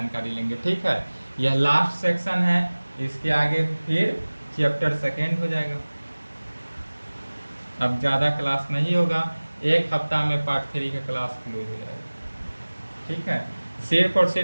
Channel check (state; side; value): inverted; both; correlation -1.00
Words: लेंगे। ठीक है, यह लास्ट सेक्शन है। इसके आगे फिर चैप्टर 2 हो जाएगा। अब ज़्यादा क्लास नहीं होगा, एक हफ्ता में पार्ट 3 का क्लास क्लोज हो जाएगा। ठीक है, सिर्फ और